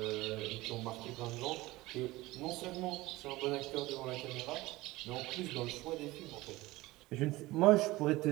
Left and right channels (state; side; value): quieter; left; 19.4 dB